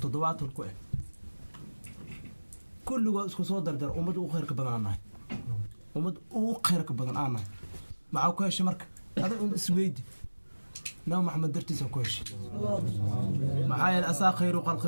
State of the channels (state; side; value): inverted; both; correlation -1.00